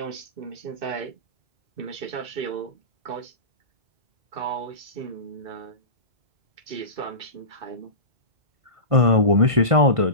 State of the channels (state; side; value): late; left; 1.5 ms